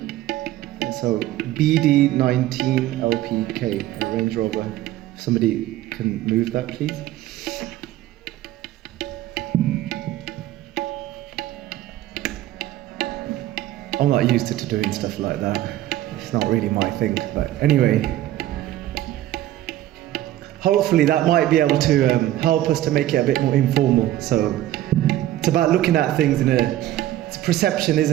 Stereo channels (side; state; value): left; quieter; 14.0 dB